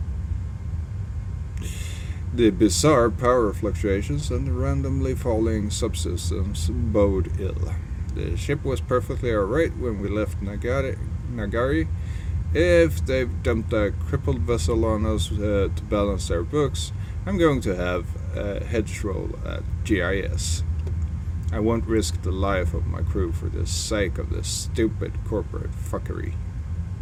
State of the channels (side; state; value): both; identical; correlation 1.00